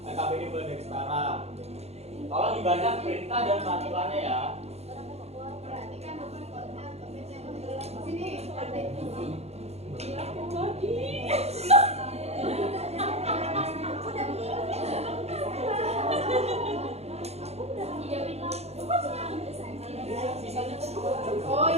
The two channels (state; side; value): late; left; 0.31 ms